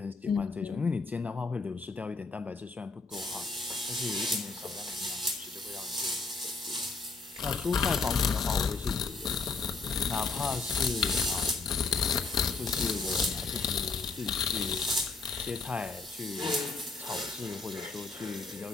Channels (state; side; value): quieter; right; 4.2 dB